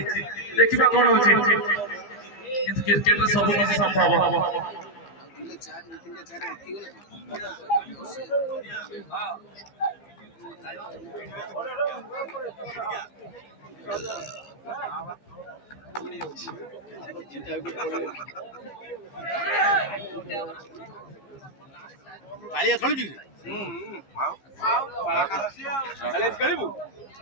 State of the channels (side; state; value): right; late; 15 ms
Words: ଦେଖିବା কোন হଉଛି কিন্তু ক্রিকেটରେ ସବୁ କିଛି ସମ୍ଭବ କାଳିଆ ଖେଳୁଛି